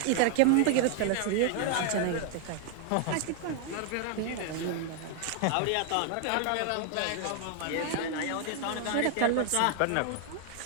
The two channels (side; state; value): both; different; correlation 0.00